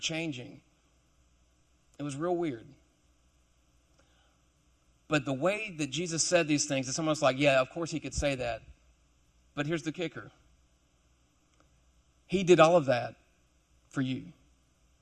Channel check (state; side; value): identical; both; correlation 1.00